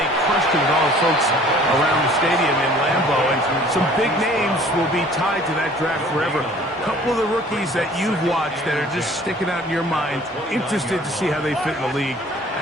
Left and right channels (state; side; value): normal; both; correlation 0.52